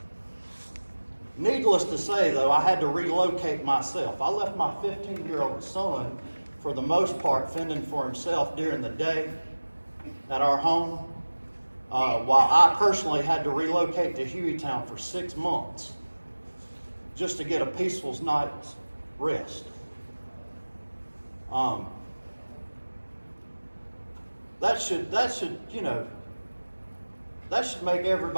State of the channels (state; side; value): inverted; both; correlation -1.00